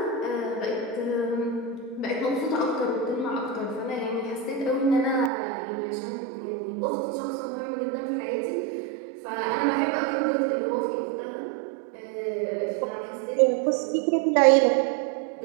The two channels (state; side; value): drops out; left; at 5.3 s